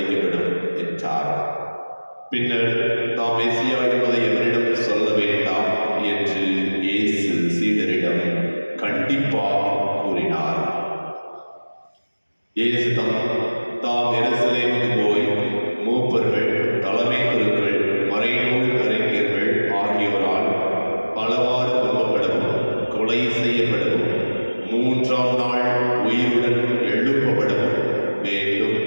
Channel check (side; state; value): both; inverted; correlation -1.00